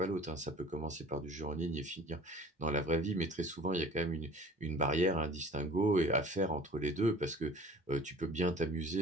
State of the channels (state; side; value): normal; both; correlation 0.46